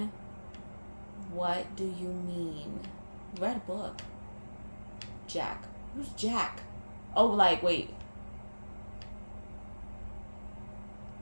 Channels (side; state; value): both; inverted; correlation -1.00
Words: What do you mean? Red book. Jack. Who's Jack? Oh, like, wait.